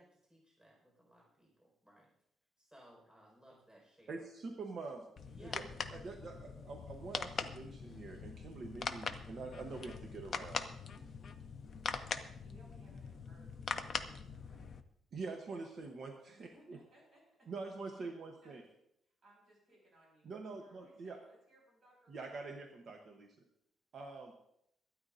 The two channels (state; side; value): normal; both; correlation 0.76